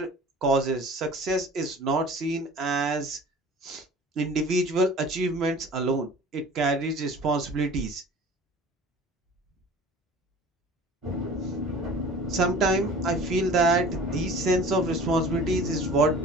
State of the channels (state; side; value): normal; both; correlation 0.43